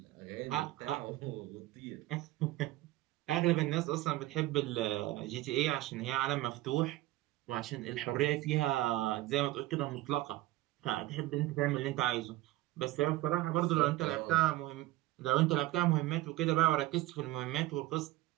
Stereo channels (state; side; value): quieter; left; 17.1 dB